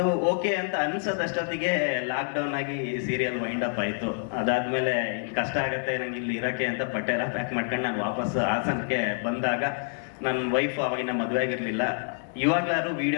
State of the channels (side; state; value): right; silent; 60 dB below the other